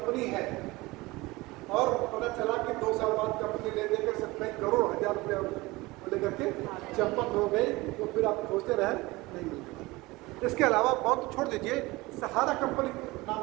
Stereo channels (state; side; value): quieter; left; 21.4 dB